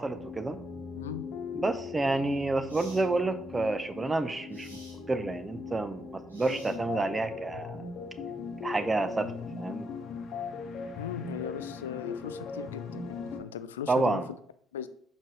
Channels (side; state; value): both; normal; correlation 0.79